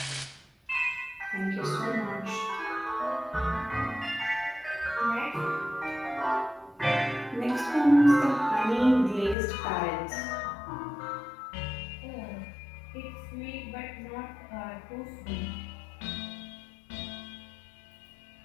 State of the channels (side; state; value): right; drops out; at 9.3 s